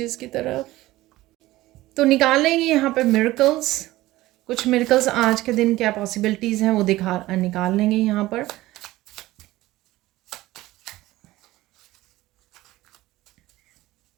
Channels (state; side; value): quieter; left; 17.4 dB